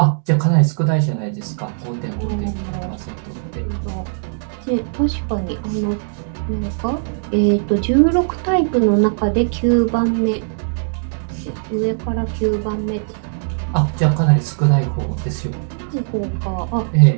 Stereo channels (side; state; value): left; silent; digital silence